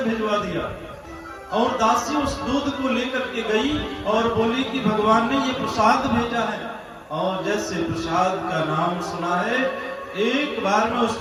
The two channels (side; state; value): both; identical; correlation 1.00